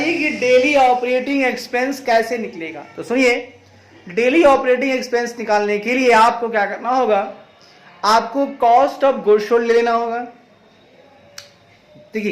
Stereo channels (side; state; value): both; identical; correlation 1.00